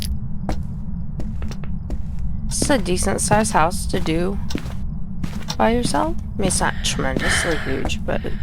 This is a decent sized house to do by yourself. I mean, it's not tremendously huge, but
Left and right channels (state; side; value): identical; both; correlation 1.00